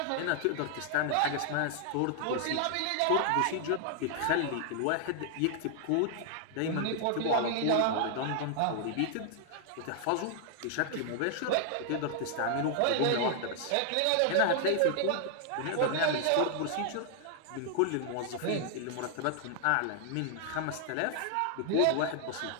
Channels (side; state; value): both; different; correlation 0.00